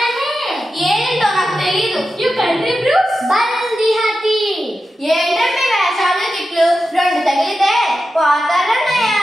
है? ఏంటో నాకు తెలియదు. You country blues? బల్ది హాతి. ఏంటండి వేషాలు తిట్లు? రెండు తగిలితే పోతారన్నయ్య.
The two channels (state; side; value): normal; both; correlation 0.91